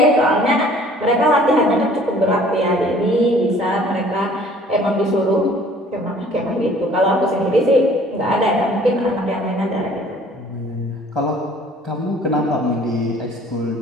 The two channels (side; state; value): both; normal; correlation 0.53